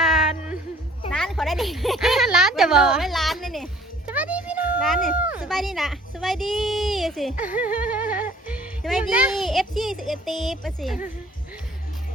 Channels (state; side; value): normal; both; correlation 0.55